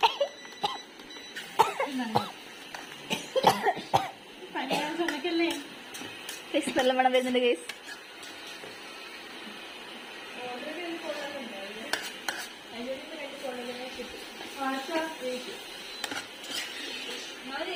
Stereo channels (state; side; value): identical; both; correlation 1.00